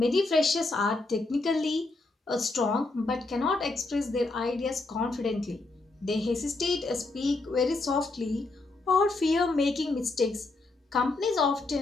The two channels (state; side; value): quieter; right; 3.3 dB